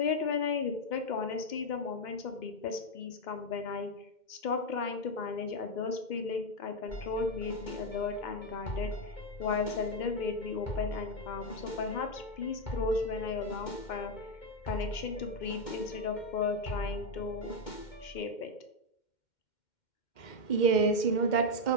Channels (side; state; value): right; late; 2.1 ms